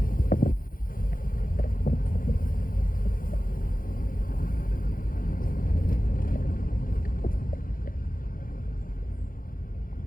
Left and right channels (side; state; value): right; late; 0.41 ms